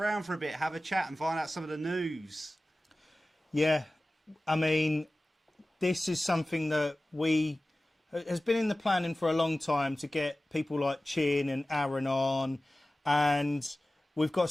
for a bit. Have a chat and find out some of the news. Yeah, I mean, this is something that has been in the planning for a long time to get people like Chin and Aaron on, and we've got a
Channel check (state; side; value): normal; both; correlation 0.96